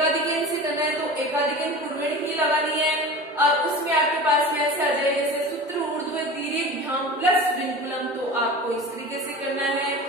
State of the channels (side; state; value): both; normal; correlation 0.34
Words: से करना है तो एकाधिकन पूर्वेण ही लगानी है, और उसमें आपके पास में ऐसे आ जाए जैसे सूत्र ऊर्ध्व तिर्यक प्लस विनकुलम तो आपको इस तरीके से करना है।